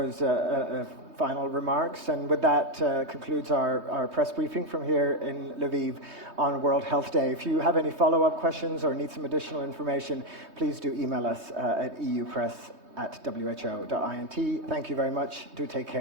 final remarks. And with that concludes our press briefing from here in Lviv on World Health Day. If you have any follow-up questions or need some additional information, please do email us at eupress@who.int. Thank you very much. Do take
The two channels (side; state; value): left; late; 3.2 ms